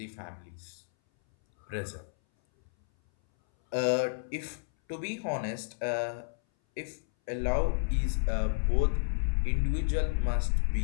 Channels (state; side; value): silent; right; 57 dB below the other